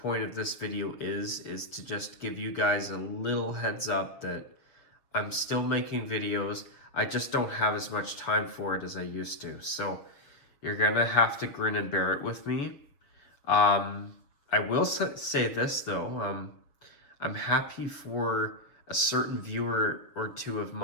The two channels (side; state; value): right; late; 7.1 ms